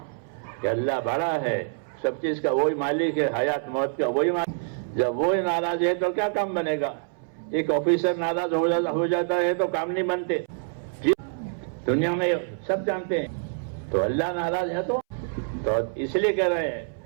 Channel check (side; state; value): left; silent; 61 dB below the other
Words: کہ اللہ بڑا ہے, سب چیز کا وہی مالک ہے, حیات موت کا وہی مالک. جب وہی ناراض ہے تو کیا کام بنے گا؟ ایک آفیسر ناراض ہو جاتا ہے تو کام نہیں بنتے. دنیا میں سب جانتے ہیں. تو اللہ ناراض ہے تو اس لیے کہہ رہے ہیں